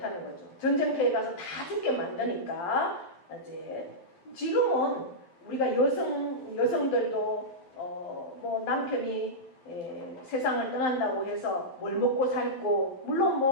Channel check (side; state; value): right; late; 11 ms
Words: 거죠. 전쟁터에 가서 다 죽게 만드니까 이제 지금은 우리가 여성들도 뭐 남편이 세상을 떠난다고 해서 뭘 먹고 살고 물론